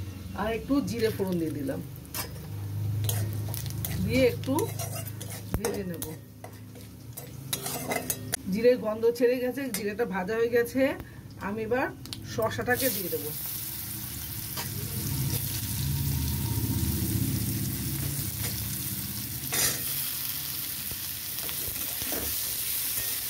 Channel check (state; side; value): identical; both; correlation 1.00